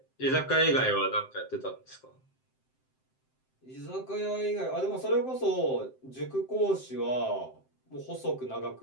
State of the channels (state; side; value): late; right; 7.7 ms